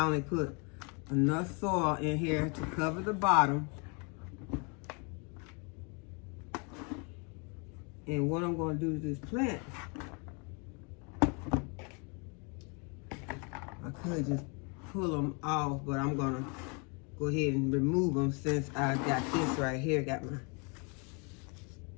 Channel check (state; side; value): quieter; right; 33.9 dB